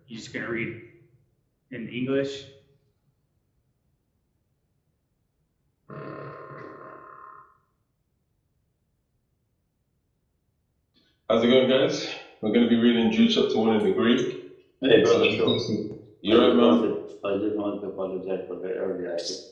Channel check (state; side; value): identical; both; correlation 1.00